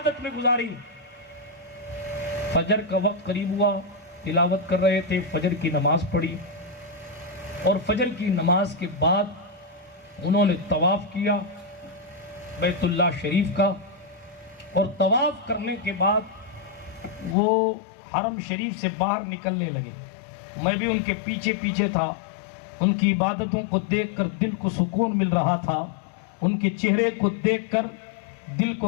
میں گزاری. فجر کا وقت قریب ہوا، تلاوت کر رہے تھے، فجر کی نماز پڑھی اور فجر کی نماز کے بعد انہوں نے طواف کیا بیت اللہ شریف کا. اور طواف کرنے کے بعد وہ حرم شریف سے باہر نکلنے لگے. میں بھی ان کے پیچھے پیچھے تھا. ان کی عبادتوں کو دیکھ کر دل کو سکون مل رہا تھا، ان کے چہرے کو دیکھ کر دل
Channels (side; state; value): right; drops out; at 17.4 s